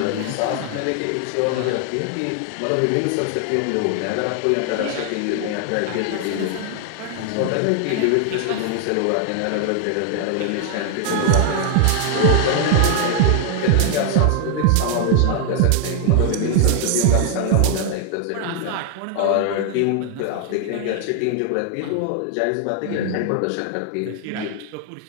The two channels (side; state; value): both; different; correlation 0.00